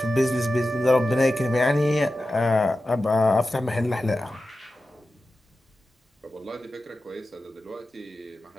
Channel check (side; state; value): both; normal; correlation 0.93